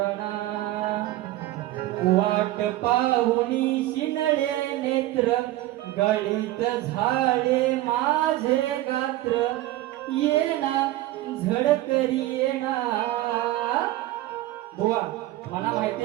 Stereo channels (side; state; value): left; quieter; 16.0 dB